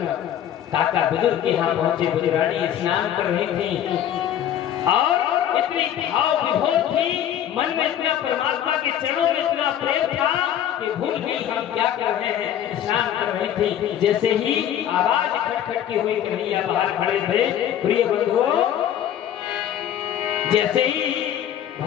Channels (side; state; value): right; quieter; 10.5 dB